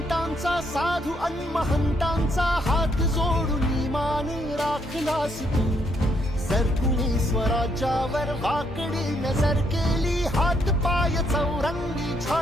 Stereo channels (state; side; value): normal; both; correlation 0.73